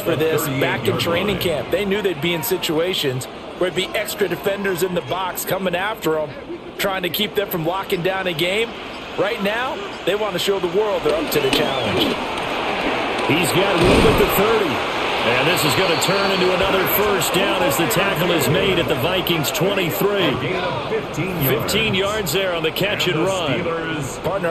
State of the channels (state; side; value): identical; both; correlation 1.00